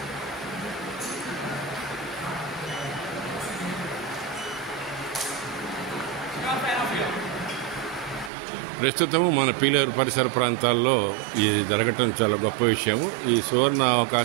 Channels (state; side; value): drops out; left; at 8.3 s